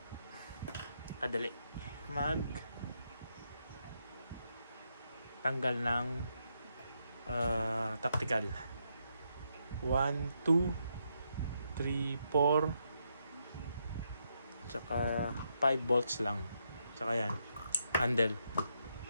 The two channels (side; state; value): both; inverted; correlation -0.79